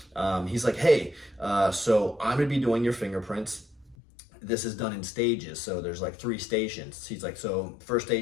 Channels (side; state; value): right; drops out; at 4.0 s